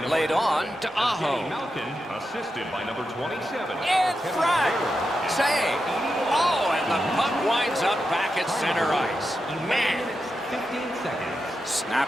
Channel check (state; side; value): normal; both; correlation 0.88